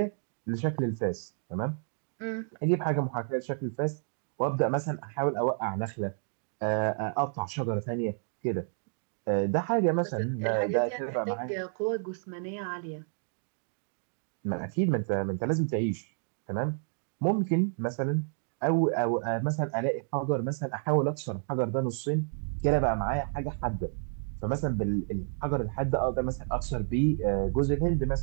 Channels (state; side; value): silent; left; digital silence